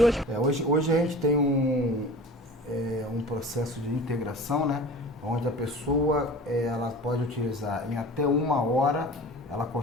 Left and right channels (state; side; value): normal; both; correlation 0.39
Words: Hoje a gente tem um processo de integração, né? Onde a pessoa ela pode utilizar em até 1 hora, ela